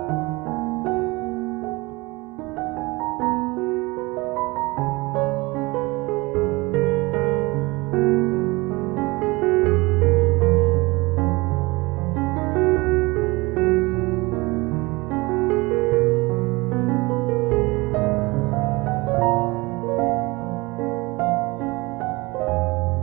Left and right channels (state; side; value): quieter; left; 23.7 dB